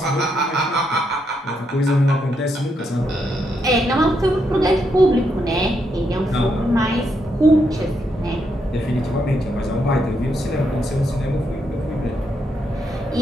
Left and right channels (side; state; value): both; normal; correlation 0.79